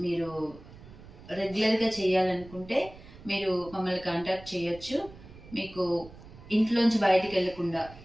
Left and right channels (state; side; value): noise; right; rumble, 19 dB below the sound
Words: మీరు రెగ్యులర్గా చేయాలనుకుంటే మీరు మమ్మల్ని కాంటాక్ట్ చేయొచ్చు. మీకు ఇంట్లోంచి బయటికి వెళ్లకుండా